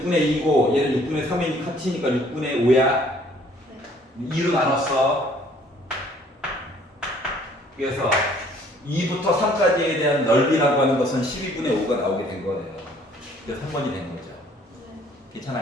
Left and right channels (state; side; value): normal; both; correlation 0.59